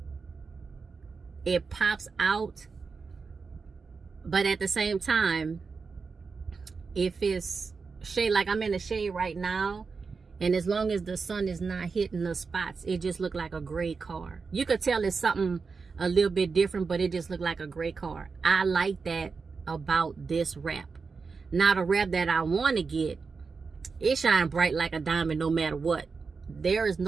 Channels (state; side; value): quieter; left; 4.8 dB